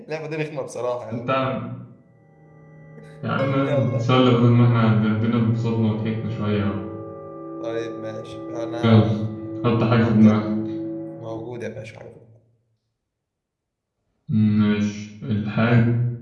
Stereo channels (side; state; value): both; identical; correlation 1.00